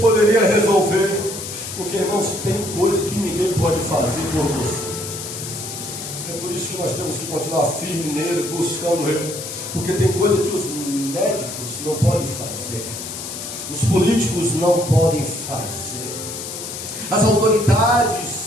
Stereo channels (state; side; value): noise; left; hiss, 8 dB below the sound